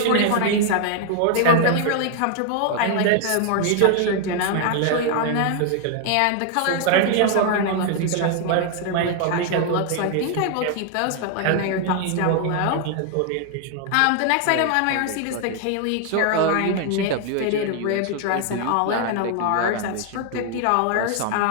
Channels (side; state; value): both; different; correlation 0.00